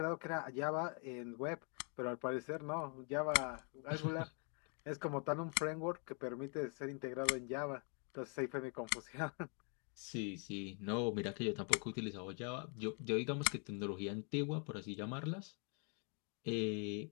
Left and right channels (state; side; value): quieter; right; 39.1 dB